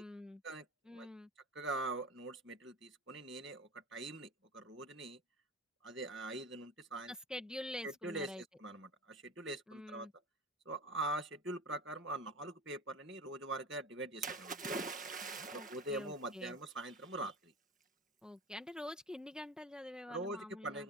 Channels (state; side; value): normal; both; correlation 0.32